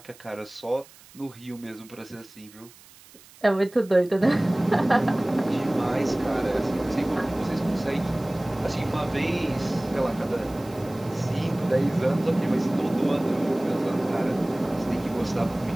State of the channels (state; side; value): noise; right; hiss, 23 dB below the sound